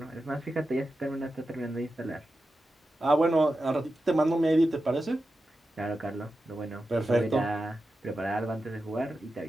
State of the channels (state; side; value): normal; both; correlation 0.91